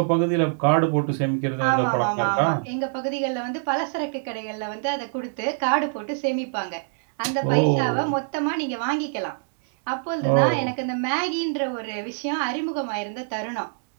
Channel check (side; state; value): left; silent; digital silence